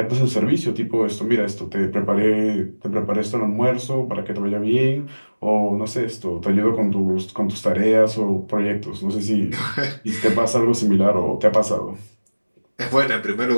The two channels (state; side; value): inverted; both; correlation -1.00